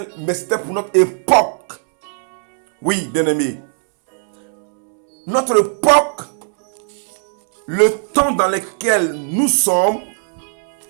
mais c'était pour notre époque. Oui, bien aimé. Notre époque, le temps dans lequel nous sommes,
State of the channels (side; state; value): left; silent; digital silence